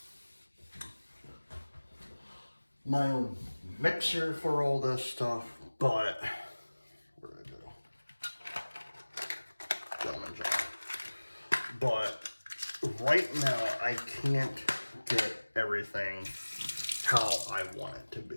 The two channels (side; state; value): both; inverted; correlation -1.00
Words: mixer for all this stuff, but where did I go? Gentleman's jar. But right now I can't get everything how I want it to